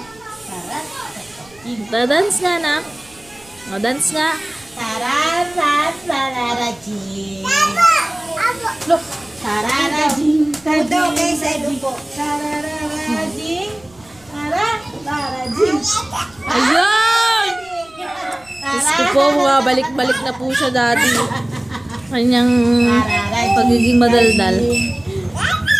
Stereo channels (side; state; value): right; noise; rumble, 27 dB below the sound